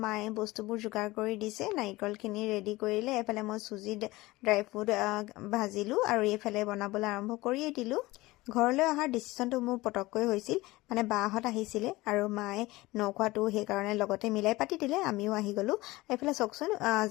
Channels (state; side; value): quieter; right; 19.9 dB